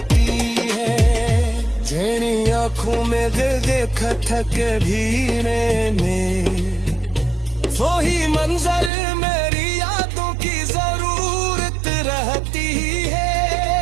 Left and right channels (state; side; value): drops out; left; at 8.9 s